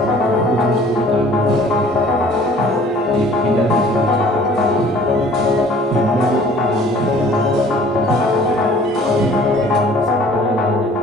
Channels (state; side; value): normal; both; correlation 0.52